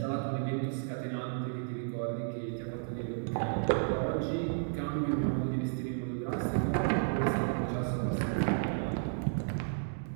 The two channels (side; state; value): left; silent; digital silence